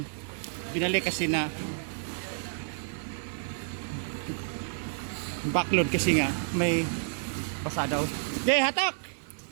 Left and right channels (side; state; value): left; silent; digital silence